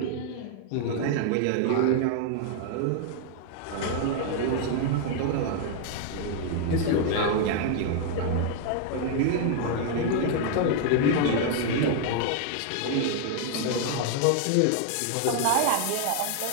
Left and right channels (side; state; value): both; different; correlation 0.00